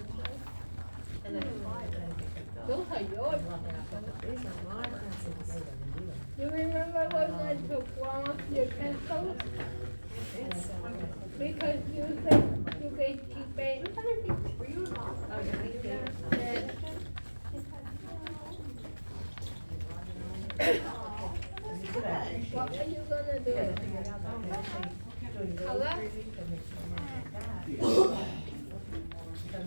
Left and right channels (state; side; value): inverted; both; correlation -1.00